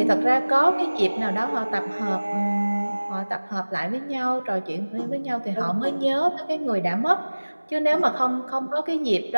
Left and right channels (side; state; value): both; inverted; correlation -1.00